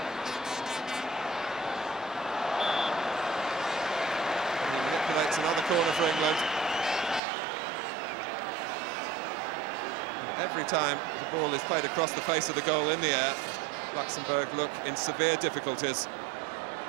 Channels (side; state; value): left; drops out; at 7.2 s